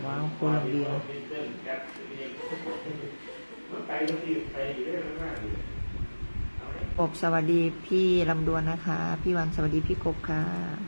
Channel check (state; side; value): inverted; both; correlation -1.00